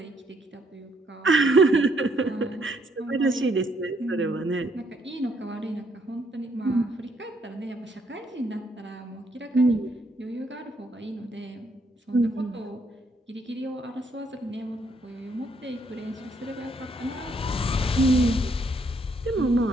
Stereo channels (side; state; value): both; normal; correlation 0.71